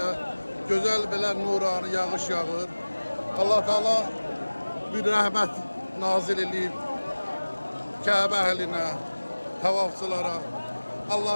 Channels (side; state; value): both; inverted; correlation -1.00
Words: güzel belə nurani yağış yağır. Allah Teala bir rəhmət nazil edib Kəbə əhlinə, tavafçılara.